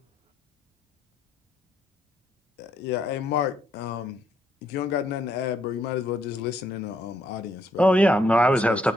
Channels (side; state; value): both; normal; correlation 0.73